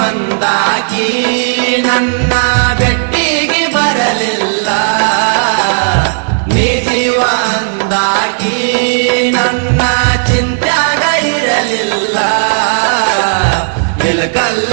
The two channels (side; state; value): left; silent; digital silence